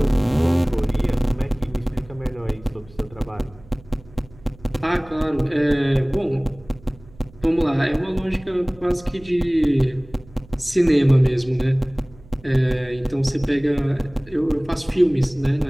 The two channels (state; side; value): noise; right; hum, 23 dB below the sound